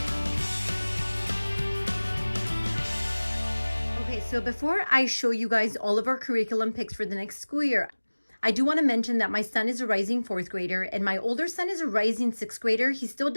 Okay, so before I show you guys all of our curriculum picks for the next school year, I do want to mention that my son is a rising fourth grader and my older son is a rising sixth grader. He still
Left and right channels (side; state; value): both; inverted; correlation -1.00